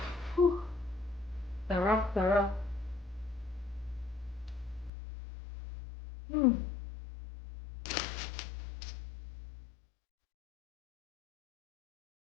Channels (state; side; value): drops out; right; at 4.9 s